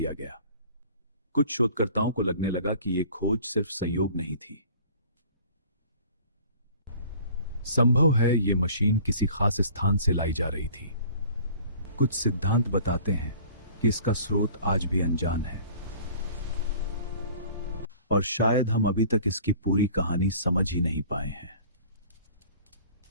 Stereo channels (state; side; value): inverted; both; correlation -0.49